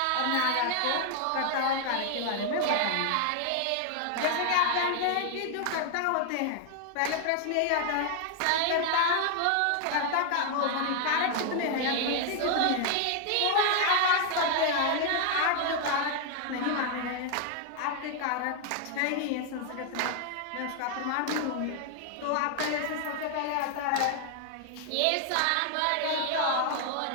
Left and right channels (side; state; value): both; different; correlation 0.00